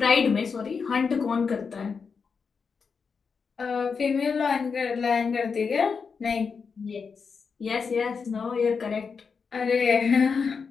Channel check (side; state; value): right; quieter; 5.5 dB